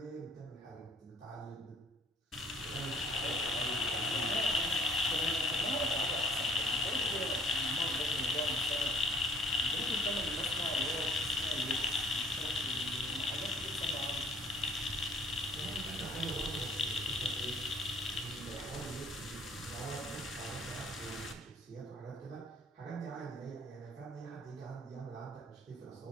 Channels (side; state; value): both; normal; correlation 0.57